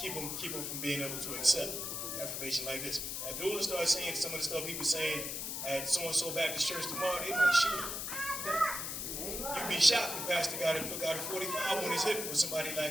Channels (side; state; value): left; noise; hiss, 4 dB below the sound